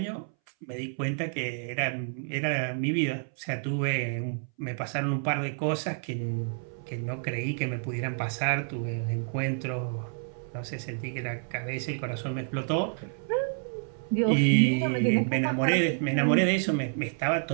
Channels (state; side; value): silent; left; 58 dB below the other